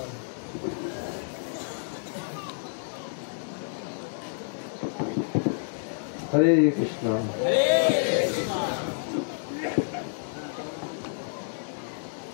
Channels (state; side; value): silent; right; digital silence